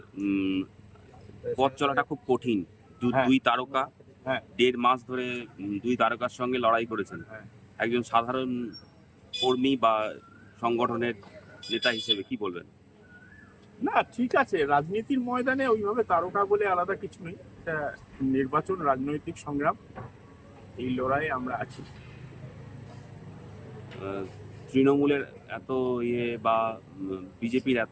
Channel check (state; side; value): identical; both; correlation 1.00